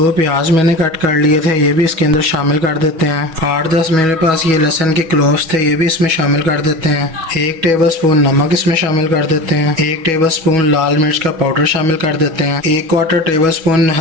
प्याज मैंने कट कर लिए थे, ये भी इसके अंदर शामिल कर देते हैं। 8-10 मेरे पास ये लहसुन के क्लोव्स थे, ये भी इसमें शामिल कर देते हैं। 1 टेबलस्पून नमक इसमें शामिल कर देते हैं। 1 टेबलस्पून लाल मिर्च का पाउडर शामिल कर देते हैं। 1/4 टेबलस्पून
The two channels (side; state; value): left; late; 6.2 ms